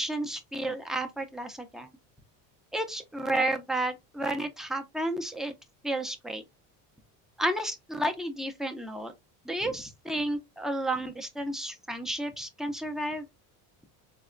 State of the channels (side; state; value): both; normal; correlation 0.77